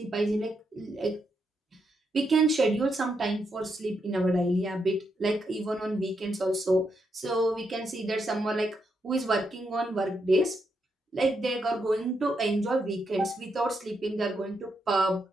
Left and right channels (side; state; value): both; normal; correlation 0.81